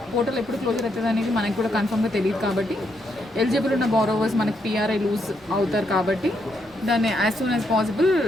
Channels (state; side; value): normal; both; correlation 0.78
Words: పోర్టల్ ఎప్పుడు క్లోజర్ అవుతుంది అనేది మనకి కూడా కన్ఫర్మ్గా తెలియదు. కాబట్టి ఎలిజిబుల్ ఉన్న బారోవర్స్ మనకి పిఆర్ఐ లూజ్ అవుతారు. కాబట్టి దాన్ని as soon as possible